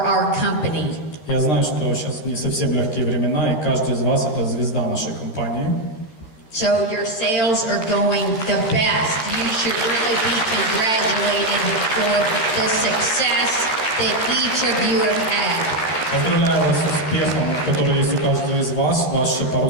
our company. Я знаю, что сейчас не совсем легкие времена, и каждый из вас – это звезда нашей компании. So your sales are going the best. You should really be congratulated for the success that each of you have had. Поздравляю вас с успехом, который есть у каждого из вас. Ваши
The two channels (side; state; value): right; late; 13 ms